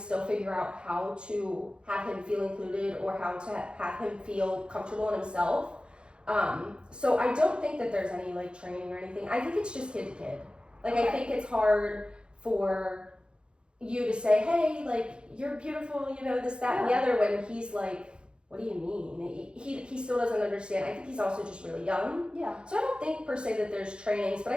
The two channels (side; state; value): left; late; 0.054 ms